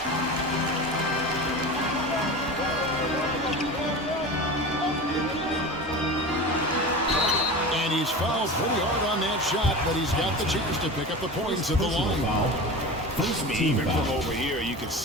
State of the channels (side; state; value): both; normal; correlation 0.30